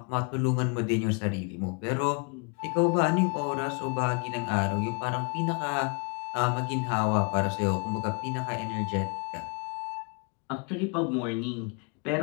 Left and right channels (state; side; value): quieter; right; 36.7 dB